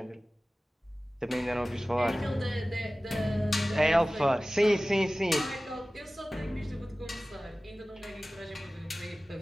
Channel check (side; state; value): both; normal; correlation 0.97